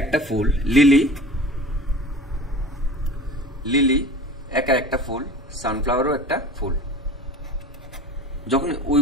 একটা ফুল, লিলি একা একটা ফুল, সানফ্লাওয়ারও একটা ফুল। যখন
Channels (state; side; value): normal; both; correlation 0.38